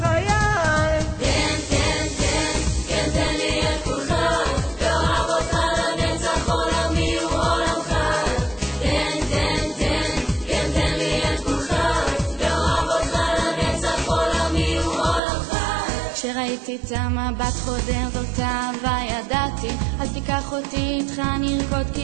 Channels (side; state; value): left; drops out; at 15.2 s